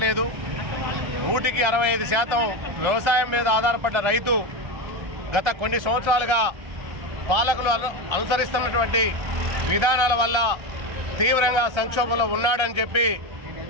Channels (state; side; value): late; left; 1.3 ms